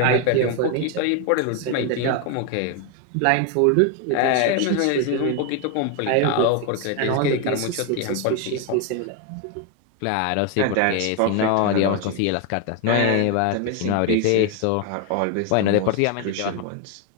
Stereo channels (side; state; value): both; different; correlation 0.01